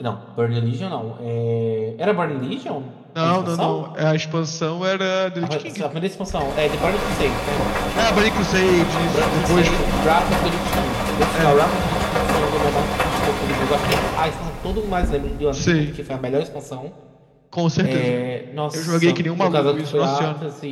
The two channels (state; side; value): identical; both; correlation 1.00